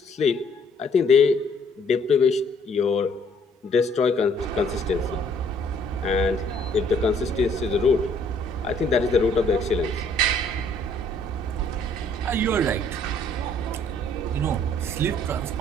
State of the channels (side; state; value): both; normal; correlation 0.62